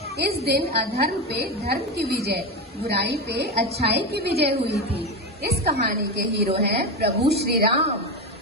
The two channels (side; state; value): both; normal; correlation 0.16